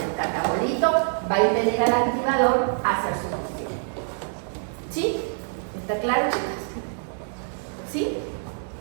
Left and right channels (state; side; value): silent; left; 61 dB below the other